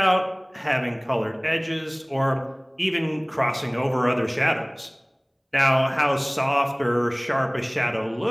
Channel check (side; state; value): both; identical; correlation 1.00